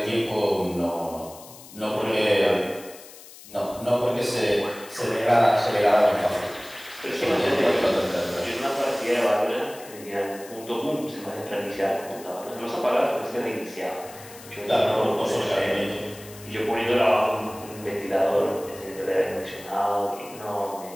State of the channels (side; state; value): left; noise; hiss, 18 dB below the sound